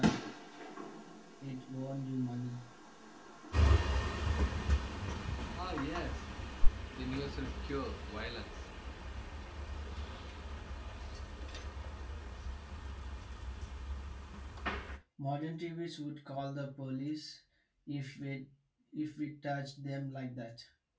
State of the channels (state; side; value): identical; both; correlation 1.00